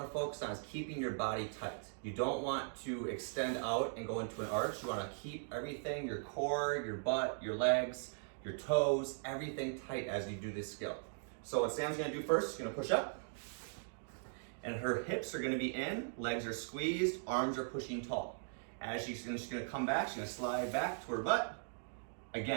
focus on is keeping your body tight. You don't want to extend out and go into an arch. You wanna keep everything, your core, your butt, your legs, your toes, everything tight as you do this skill. So what Sam's gonna do first, she's gonna push up, and her hips are gonna be in, legs are squeezed, arms are pushing tall. As she's gonna come back, she's gonna slide back to her butt.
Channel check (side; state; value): left; silent; digital silence